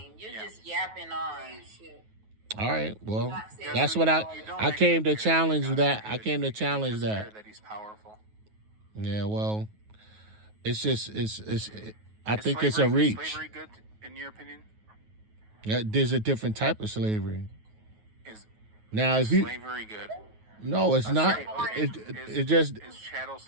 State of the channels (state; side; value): late; left; 9.3 ms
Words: You're just yapping on. All right, well, Not saying that's you what don't I came to actually care challenge God that. is I good. came to You challenge just care that. that he's powerful. Yeah, well, it's just I Is think it's a slavery- is reach. slavery good in your opinion? Yeah, there's a different type of slavery. Is Now, is if you slavery good? no, it's not. Okay. It just Is chattel